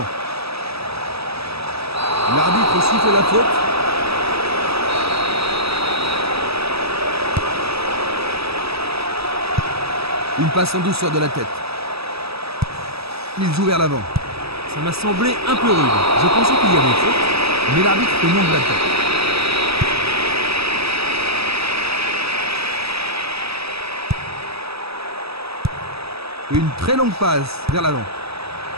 L'arbitre siffle la faute. Une passe en douceur de la tête. Il joue vers l'avant. Ça m'a semblé un peu rude. Je pensais qu'il y avait faute, Mais l'arbitre fait non de la tête. Une très longue passe vers l'avant.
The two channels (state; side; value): late; left; 0.78 ms